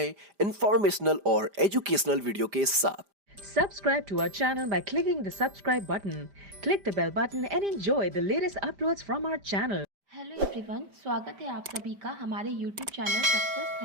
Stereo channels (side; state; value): left; late; 5.0 ms